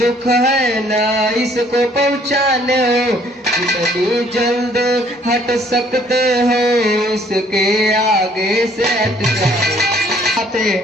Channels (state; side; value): normal; both; correlation 0.61